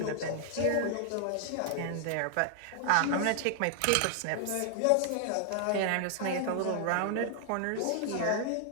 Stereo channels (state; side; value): different; both; correlation 0.00